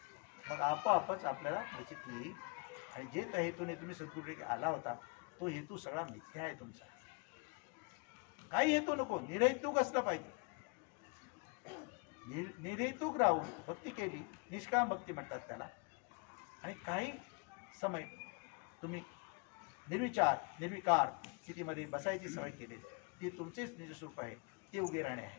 मग आपोआपच आपल्याला निश्चित येईल. आणि जे त्या हेतूने तुम्ही सद्गुरूकडे आला होता तो हेतू सगळा मिथ्या आहे तुमचा. काही हेतू नको, निर्हेतुक असला पाहिजे. निर्हेतुक राहून भक्ती केली, निष्काम भक्ती म्हणतात त्याला. आणि काही समय तुम्ही निर्विचार निर्विकार स्थितीमध्ये बसायची सवय केली, ती तुमचेच निजस्वरूप आहे, ते उगे राहणे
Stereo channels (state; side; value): quieter; right; 32.9 dB